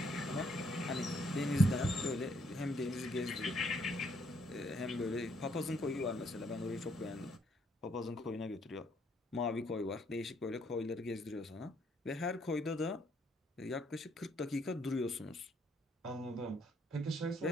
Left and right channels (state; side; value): normal; both; correlation 0.70